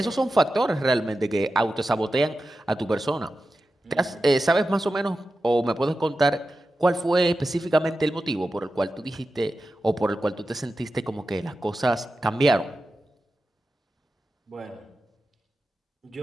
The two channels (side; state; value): both; normal; correlation 0.92